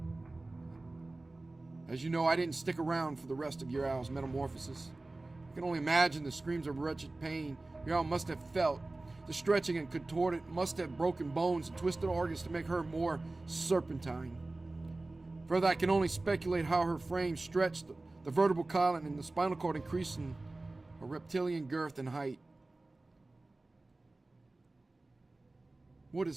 As you know, I didn't stick around for the rest of your owl's metamorphosis. I can only imagine the screams of wretched pain your owl must have felt. The stretching and contorted must have broken bones and twisted organs to make her more serpentine. Further, I can only speculate how her frame stretched, the vertebral column and the spinal cord increasing a reptilian girth and height. What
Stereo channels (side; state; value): left; quieter; 3.0 dB